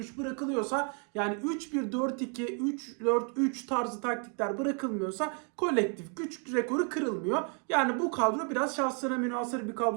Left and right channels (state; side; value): quieter; left; 39.4 dB